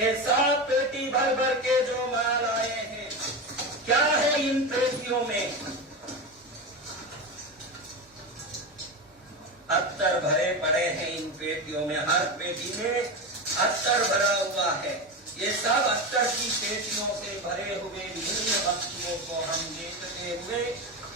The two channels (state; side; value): normal; both; correlation 0.20